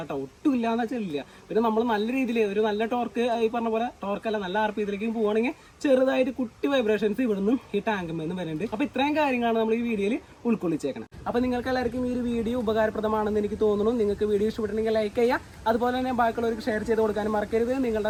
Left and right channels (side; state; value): both; identical; correlation 1.00